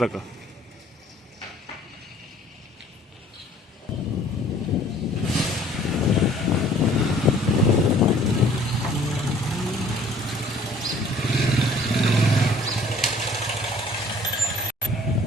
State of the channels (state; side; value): normal; both; correlation 0.54